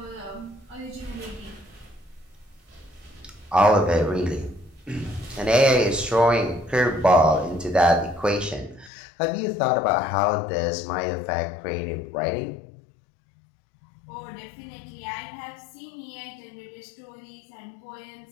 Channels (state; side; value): drops out; right; at 8.9 s